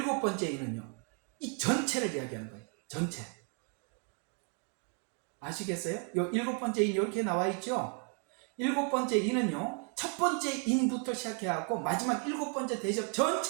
번째 인은요, 이 전체를 이야기하는 거예요. 전체. 아시겠어요? 요 일곱 번째 인 이렇게 나와 있죠? 일곱 번째 인은요, 첫 번째 인부터 시작해갖고 마지막 일곱 번째 대접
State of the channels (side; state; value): left; quieter; 36.7 dB